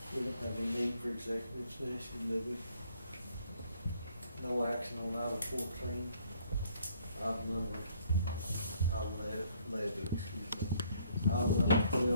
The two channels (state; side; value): inverted; both; correlation -0.64